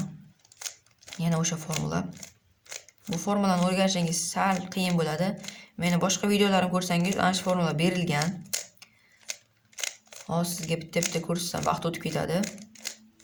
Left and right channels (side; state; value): both; identical; correlation 1.00